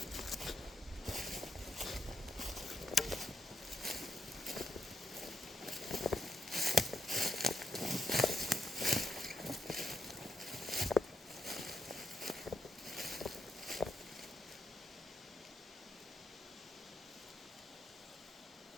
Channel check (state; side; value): normal; both; correlation 0.80